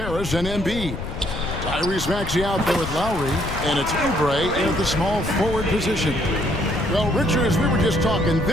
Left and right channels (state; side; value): noise; left; rumble, 7 dB below the sound